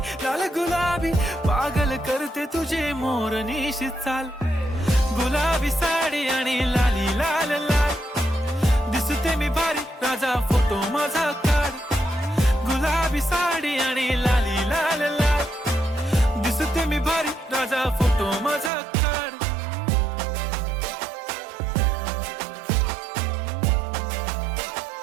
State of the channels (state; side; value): drops out; left; at 18.7 s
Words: लाल गुलाबी, पागल करते तुझे मोरनीशी चाल. गुलाबी साडी आणि लाली लाल लाल, दिसते मी भारी राजा फोटो माझा काढ. गुलाबी साडी आणि लाली लाल लाल, दिसते मी भारी राजा फोटो माझा काढ.